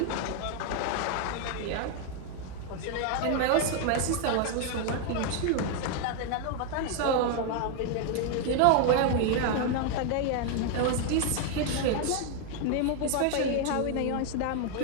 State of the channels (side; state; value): both; different; correlation 0.00